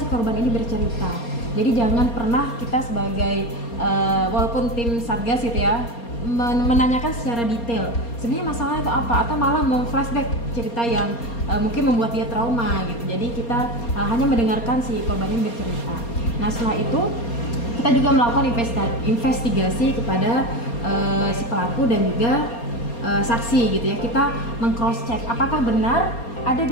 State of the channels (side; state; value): right; late; 4.3 ms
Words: korban ini bercerita. Jadi jangan pernah kita sebagai walaupun tim Satgas gitu ya, menanyakan secara detail sebenarnya masalah itu apa, atau malah memflashback cerita yang mungkin membuat dia trauma gitu. Jadi kita hanya mendengarkan si korban ini bercerita. Nah setelah itu kita juga melakukan investigasi kepada si pelaku dan juga saksi gitu ya. Kita meng-cross check apakah benar ada